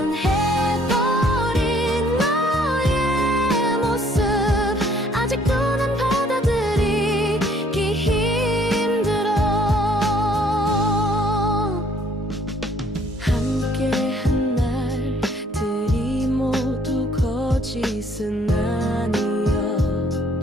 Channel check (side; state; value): both; normal; correlation 0.61